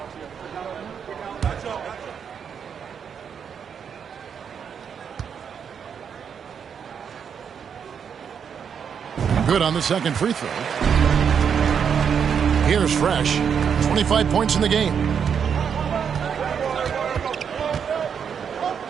Good on the second free throw. Here's Fresh. 25 points in the game.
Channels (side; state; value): left; quieter; 7.3 dB